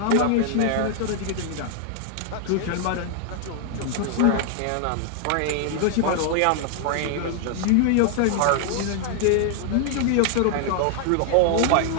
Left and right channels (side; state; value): both; different; correlation 0.00